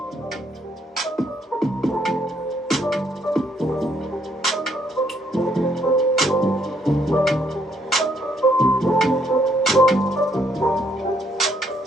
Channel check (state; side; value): normal; both; correlation 0.70